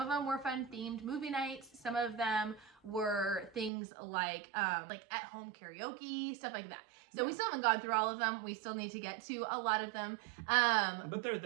them were fun themed movie nights. Some of them were things like at-home karaoke, stuff like that. So we still haven't gone through all of them. We still need to get to a lot of them. But they're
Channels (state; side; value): drops out; left; at 3.7 s